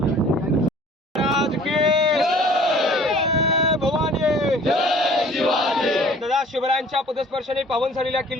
शिवरायांच्या पदस्पर्शाने पावन झालेल्या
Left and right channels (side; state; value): both; normal; correlation 0.51